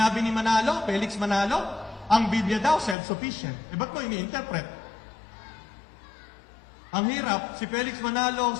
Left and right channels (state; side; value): drops out; right; at 3.0 s